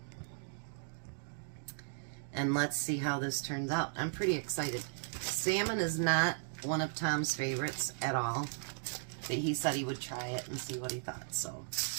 And let's see how this turns out. I'm pretty excited. Salmon is not one of Tom's favorites at all. But he said he would try it and see what he thought. So,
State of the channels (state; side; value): silent; left; digital silence